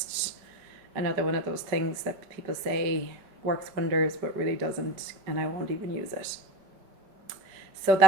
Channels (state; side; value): late; left; 5.2 ms